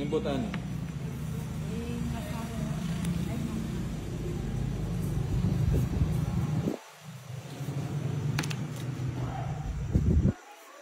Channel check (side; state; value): both; identical; correlation 1.00